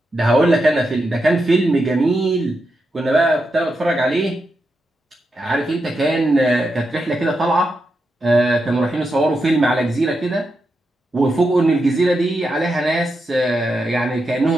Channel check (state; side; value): normal; both; correlation 0.86